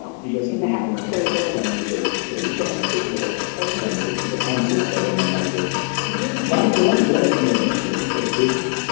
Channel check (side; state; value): right; quieter; 36.9 dB